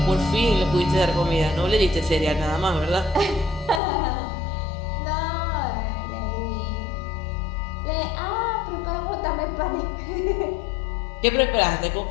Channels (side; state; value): right; drops out; at 3.8 s